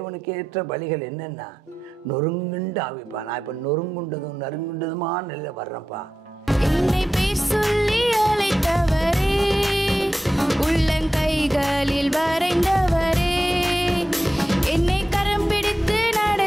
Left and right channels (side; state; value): both; normal; correlation 0.91